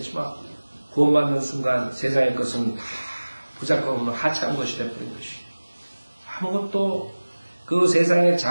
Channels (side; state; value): both; inverted; correlation -1.00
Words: 구원받는 순간 세상의 것은 다 부작용없는 하찮은 것이 되어버린 것이. 아무것도 그 세상의